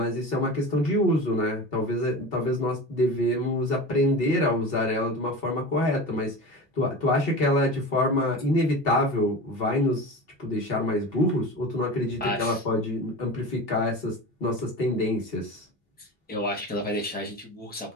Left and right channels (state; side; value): normal; both; correlation 0.31